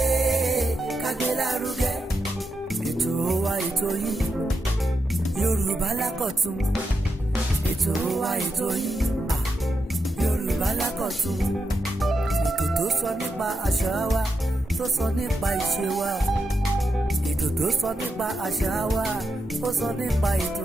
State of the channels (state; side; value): normal; both; correlation 0.85